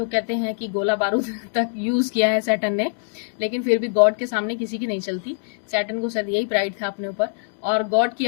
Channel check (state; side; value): silent; right; 63 dB below the other